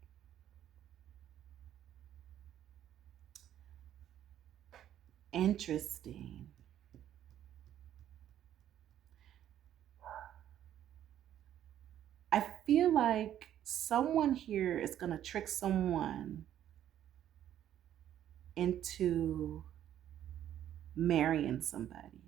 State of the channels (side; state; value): left; quieter; 11.2 dB